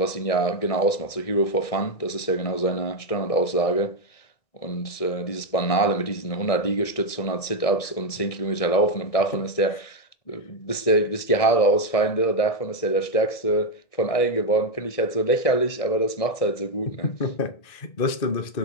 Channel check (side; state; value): right; late; 1.6 ms